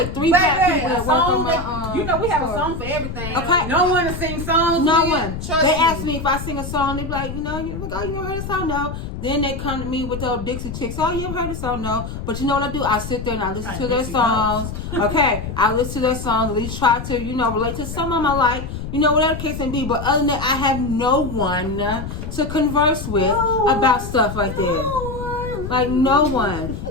3 black people that work on my you know, we have a store. song for everything. Okay. No one to sing songs. No with. one. Trust They me. ask me if I sing a song. They be like, you ever heard a song? No. Then they come to me with those Dixie Chicks. Oh, you ever heard a song? No. But you know what I do? I sit there and I listen to their Dixie songs. Okay. I listen to their songs. At least try to, relate to some of them I like. Whatever the case may be. But other than that, I have no one to converse with about stuff like that. Like no one,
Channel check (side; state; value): left; noise; rumble, 7 dB below the sound